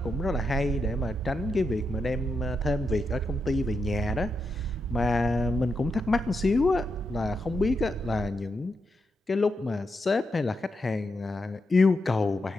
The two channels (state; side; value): normal; both; correlation 0.85